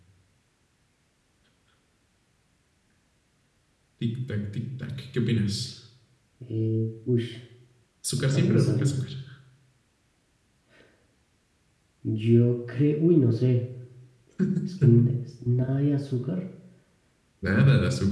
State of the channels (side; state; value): both; identical; correlation 1.00